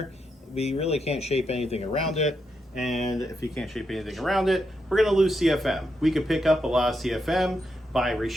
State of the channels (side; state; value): both; normal; correlation 0.83